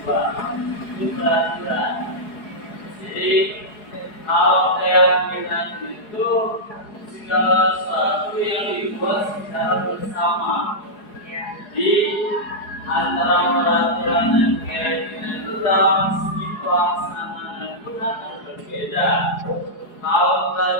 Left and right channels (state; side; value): late; right; 4.8 ms